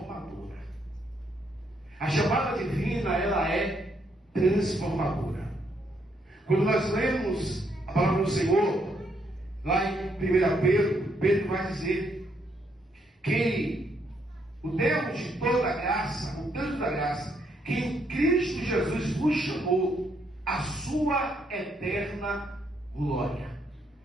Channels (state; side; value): normal; both; correlation 0.74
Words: A chamada divina, ela é transformadora. Quando nós lemos a palavra do Senhor, lá em 1 Pedro, Pedro vai dizer que o Deus de toda graça, o Deus da graça, que em Cristo Jesus vos chamou a sua eterna glória.